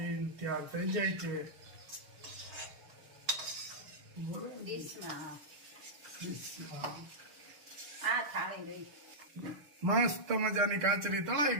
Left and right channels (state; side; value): late; left; 6.6 ms